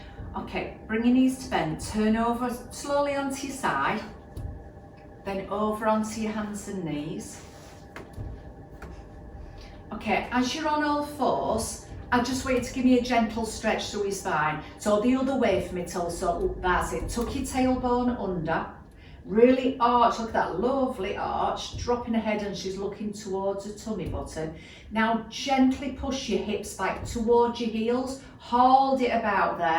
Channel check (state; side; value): identical; both; correlation 1.00